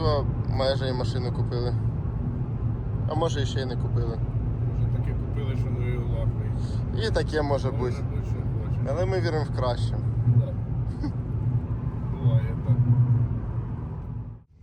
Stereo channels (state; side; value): identical; both; correlation 1.00